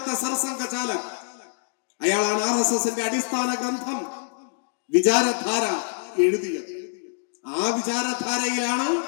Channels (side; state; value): right; silent; digital silence